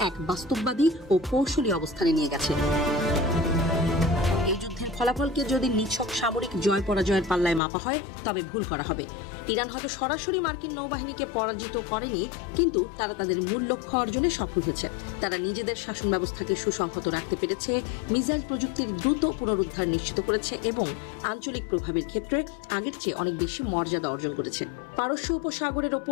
এক বাস্তববাদী ও কৌশলী অবস্থানে নিয়ে গেছে। ফলাফলকে যদি নিছক সামরিক জয় পরাজয়ের পাল্লায় মাপা হয় তবে ভুল করা হবে। ইরান হয়তো সরাসরি মার্কিন নৌবাহিনীকে পরাজিত করেনি, কিন্তু তারা তাদের মূল লক্ষ্য অর্জনে সফল হয়েছে। তারা নিজেদের শাসন ব্যবস্থাকে সুসংহত রাখতে পেরেছে, মিসাইল প্রযুক্তির দ্রুত পুনরুদ্ধার নিশ্চিত করেছে এবং আঞ্চলিক প্রভাবের ক্ষেত্রে আগের চেয়ে অনেক বেশি মর্যাদা অর্জন করেছে। পারস্য উপসাগরের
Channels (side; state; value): right; drops out; at 7.6 s